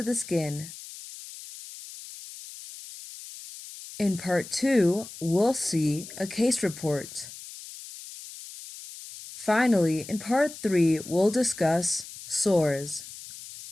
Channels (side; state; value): left; noise; hiss, 14 dB below the sound